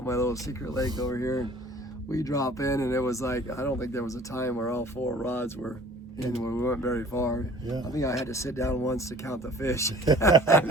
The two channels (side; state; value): both; normal; correlation 0.48